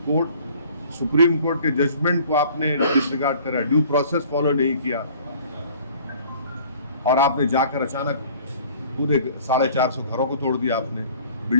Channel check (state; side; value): inverted; both; correlation -0.52